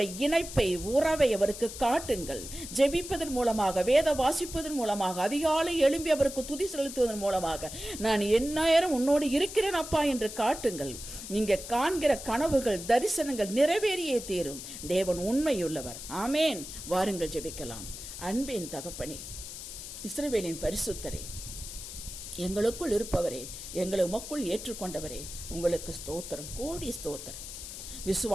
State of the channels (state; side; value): noise; left; hiss, 10 dB below the sound